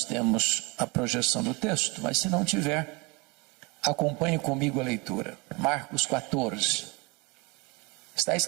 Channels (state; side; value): quieter; left; 27.6 dB